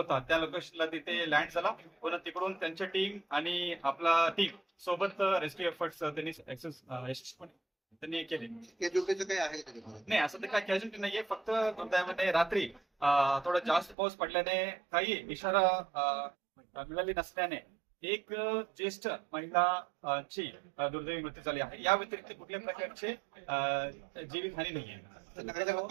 त्या लोकेशनला तिथे लँड झाला. पुन्हा तिकडून त्यांच्या टीम आणि आपला टीम सोबत रेस्क्यू एफर्ट्स त्यांनी यशस्वीपणे त्यांनी केले. काय आहे नाही, असं तर काय कॅज्युअलिटी नाहीये. फक्त दुर्दैवाने रात्री थोडा जास्त पाऊस पडल्याने काही इशारा मिळाली नसल्याने एक ज्येष्ठ महिलाची दुर्दैवी मृत्यू झाली आहे. या व्यतिरिक्त कुठल्या प्रकारचे जीवितहानी नाहीये.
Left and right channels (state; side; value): drops out; left; at 14.0 s